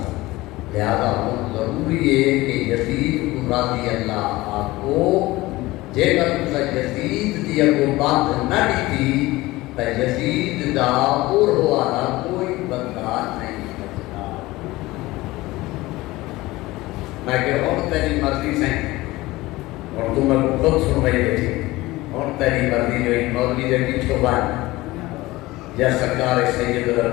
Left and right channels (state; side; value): quieter; right; 19.3 dB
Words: لہذا ہوں ضروری ہے کہ یزید راضی اللہ آپ کو جے کر تسا یزید دی اگو بات نہ ڈیتی تو یزید دا اور ہوا کوئی بدلا نہیں بچتا میں کہ اور تیری مرضی سے اور تم میں خود سن رہی بیٹھی اور تیری مرضی جو ایک مولوی دے پیچھو بان یا سرکار سید